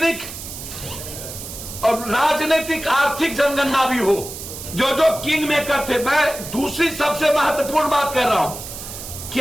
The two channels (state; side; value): noise; right; hiss, 10 dB below the sound